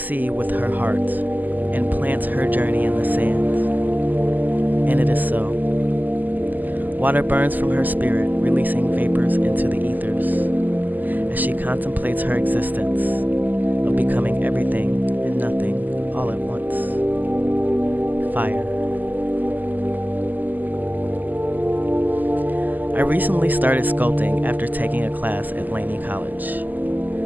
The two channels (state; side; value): late; left; 0.084 ms